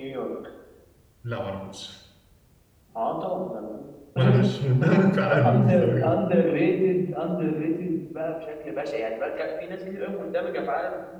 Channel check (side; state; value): both; identical; correlation 1.00